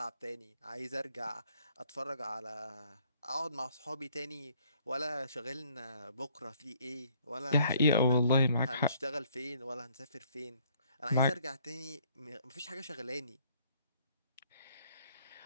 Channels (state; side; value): inverted; both; correlation -0.64